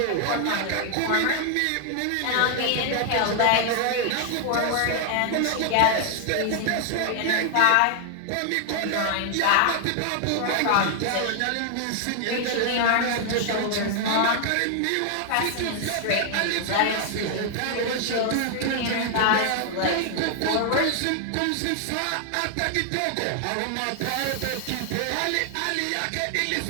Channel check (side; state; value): both; different; correlation 0.00